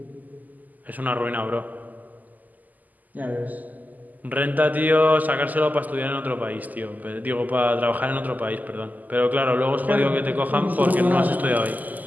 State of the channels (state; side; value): late; left; 0.081 ms